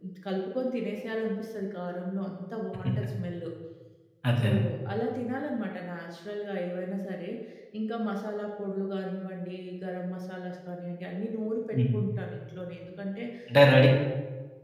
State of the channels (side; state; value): both; identical; correlation 1.00